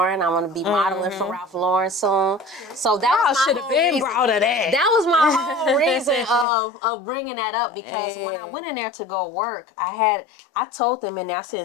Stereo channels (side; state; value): right; drops out; at 6.5 s